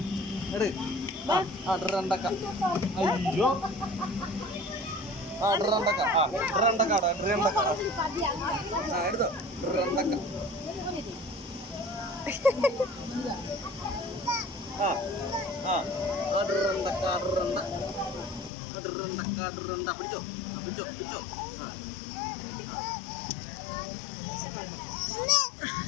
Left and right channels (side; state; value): right; drops out; at 18.5 s